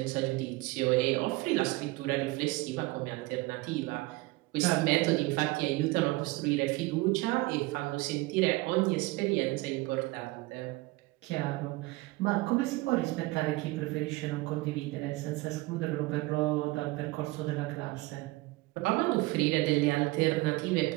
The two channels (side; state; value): left; quieter; 21.6 dB